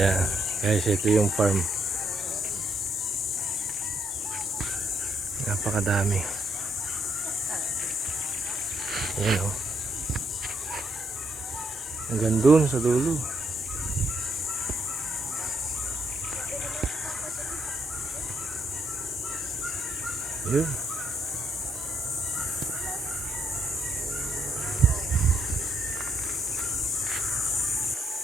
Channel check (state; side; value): normal; both; correlation 0.74